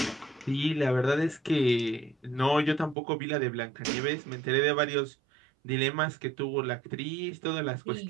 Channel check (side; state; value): left; drops out; at 3.0 s